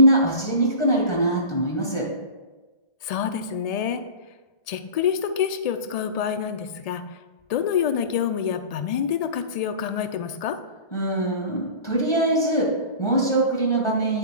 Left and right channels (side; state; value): right; late; 1.7 ms